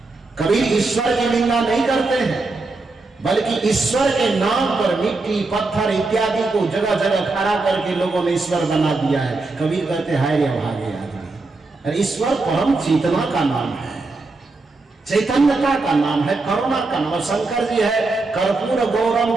कबीर ईश्वर की निंदा नहीं करते हैं, बल्कि ईश्वर के नाम पर मिट्टी, पत्थर इत्यादि को जगह जगह खड़ा करके लोगों ने ईश्वर बना दिया है। कबीर कहते हाय रे भागे आदमी, अरे ईश्वर परम चेतना का नाम है, चैतन्यता का नाम है, करुणा का नाम। शंकर जी है कर्पूर गौरम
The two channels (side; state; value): left; quieter; 3.5 dB